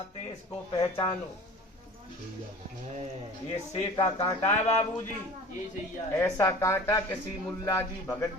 इसको पहचानो। ये से का कांटा है बाबूजी। ऐसा कांटा किसी मुल्ला जी, भगत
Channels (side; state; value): both; normal; correlation 0.41